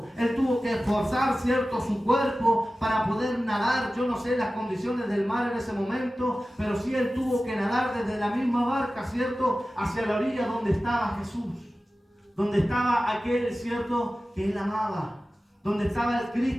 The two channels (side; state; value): both; normal; correlation 0.95